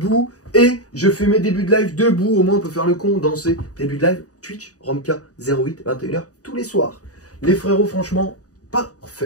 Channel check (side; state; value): right; late; 0.67 ms